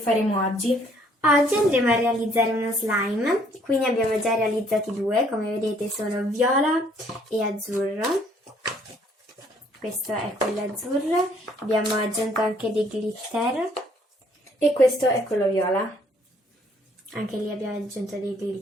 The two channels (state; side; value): normal; both; correlation 0.63